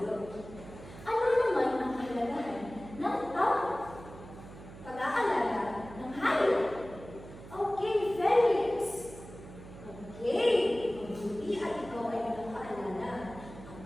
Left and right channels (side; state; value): right; noise; hum, 16 dB below the sound